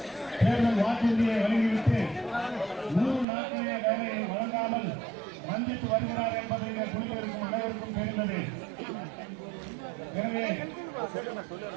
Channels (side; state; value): left; drops out; at 3.2 s